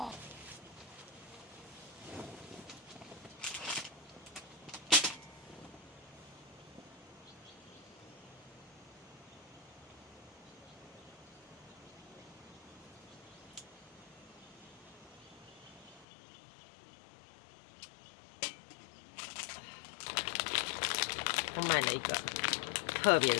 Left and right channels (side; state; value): right; drops out; at 16.1 s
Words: 我买了一个特别的